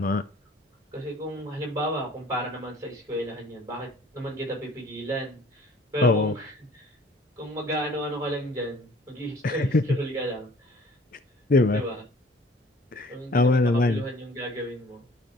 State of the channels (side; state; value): both; normal; correlation 0.52